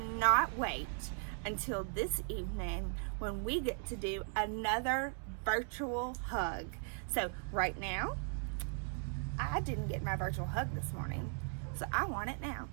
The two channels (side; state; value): left; silent; 52 dB below the other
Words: wait until this evening when we get to do another virtual hug. So right now, I didn't get my virtual hug this morning, so I want it now.